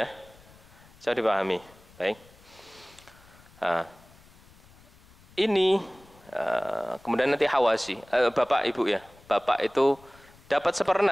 Saya dipahami. Baik. Nah, ini kemudian nanti hawasi, bapak ibu ya. Bapak itu dapat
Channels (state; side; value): noise; left; rumble, 26 dB below the sound